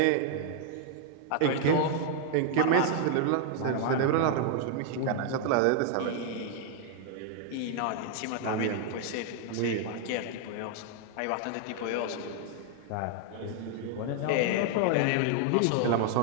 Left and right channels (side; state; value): both; different; correlation 0.00